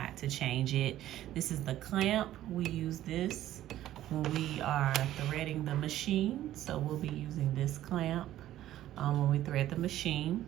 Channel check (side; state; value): left; quieter; 13.3 dB